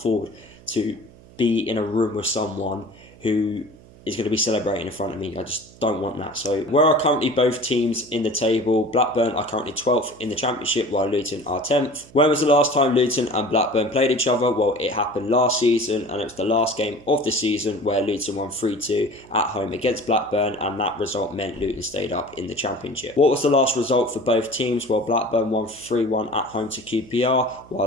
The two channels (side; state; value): right; noise; hum, 23 dB below the sound